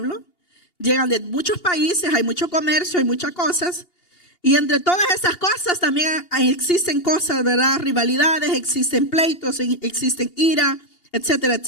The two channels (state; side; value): late; right; 2.8 ms